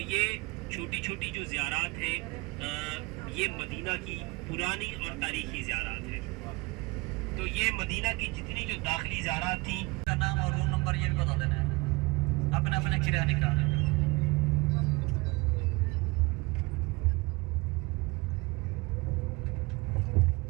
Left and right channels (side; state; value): left; quieter; 25.0 dB